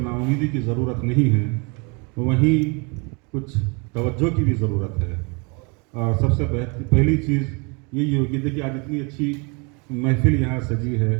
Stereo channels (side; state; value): left; quieter; 31.9 dB